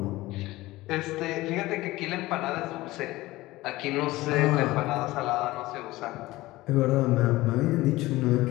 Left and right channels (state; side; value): quieter; right; 18.6 dB